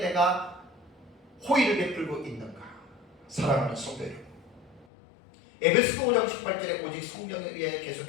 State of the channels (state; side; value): drops out; right; at 4.9 s